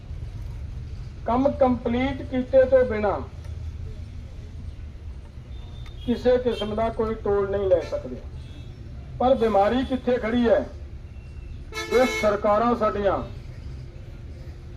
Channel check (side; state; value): both; identical; correlation 1.00